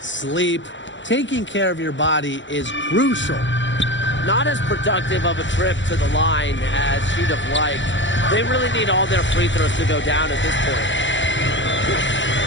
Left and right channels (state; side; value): late; right; 0.54 ms